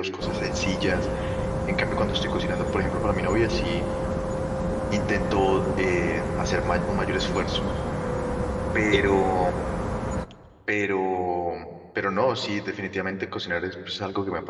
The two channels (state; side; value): identical; both; correlation 1.00